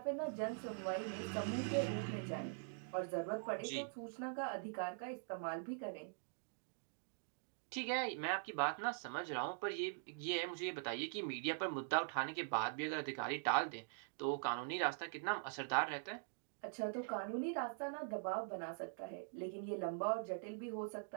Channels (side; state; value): left; silent; digital silence